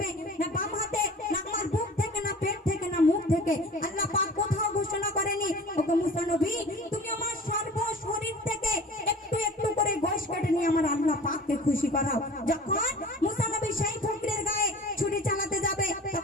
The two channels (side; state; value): both; normal; correlation 0.42